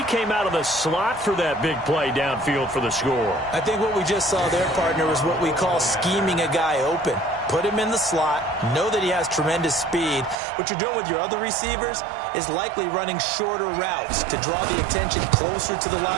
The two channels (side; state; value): left; drops out; at 10.4 s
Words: came out of the slot for that big play downfield for the score. I think what we just saw there, partner, was what we call scheming a guy open. Put him in the slot, know that he has tremendous speed. What you're doing with your other receivers is likely running shorter routes to draw the attention closer to the